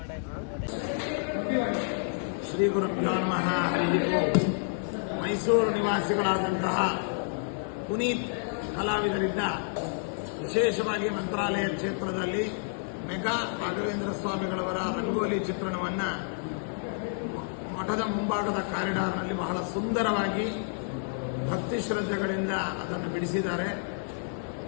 ಶ್ರೀ ಗುರುಭ್ಯೋ ನಮಃ. ಹರಿ ಓಂ. ಮೈಸೂರು ನಿವಾಸಿಗಳಾದಂತಹ ಪುನೀತ್ ಕಲಾವಿದರಿಂದ ವಿಶೇಷವಾಗಿ ಮಂತ್ರಾಲಯ ಕ್ಷೇತ್ರದಲ್ಲಿ ಮೆಗಾ ರಾಘವೇಂದ್ರ ಸ್ವಾಮಿಗಳವರ ರಂಗೋಲಿ ಚಿತ್ರಣವನ್ನು ಮಠದ ಮುಂಭಾಗದ ಕಾರಿಡಾರ್ನಲ್ಲಿ ಬಹಳ ಸುಂದರವಾಗಿ ಭಕ್ತಿ ಶ್ರದ್ಧೆಗಳಿಂದ ಅದನ್ನು ಬಿಡಿಸಿದ್ದಾರೆ.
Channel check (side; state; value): right; silent; digital silence